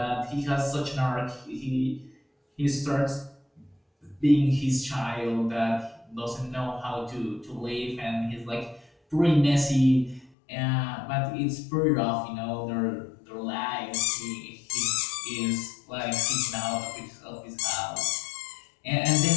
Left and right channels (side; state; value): right; drops out; at 10.3 s